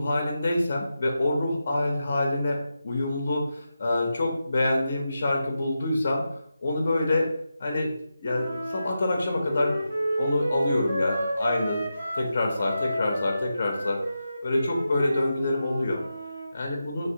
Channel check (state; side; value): inverted; both; correlation -0.89